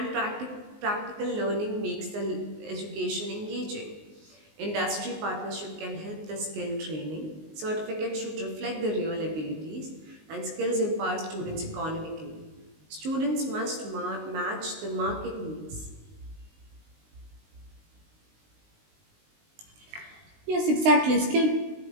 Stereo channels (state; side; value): late; left; 19 ms